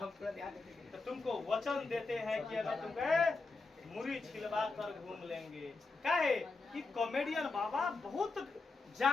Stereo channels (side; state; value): right; quieter; 3.8 dB